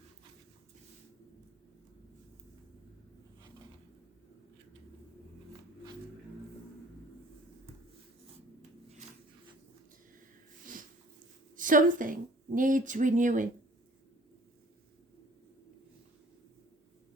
Something needs renewing.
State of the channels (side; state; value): both; normal; correlation 0.52